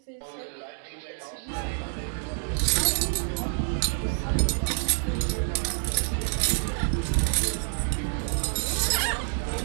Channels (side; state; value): left; silent; 60 dB below the other